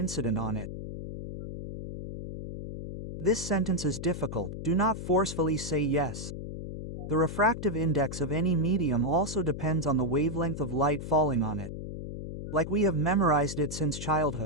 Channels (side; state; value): left; noise; hum, 8 dB below the sound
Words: on it. This sentence is difficult. Do not forcefully say yes. The refractive index of any medium also depends on the wavelength of light falling on it. Like we have memorized it since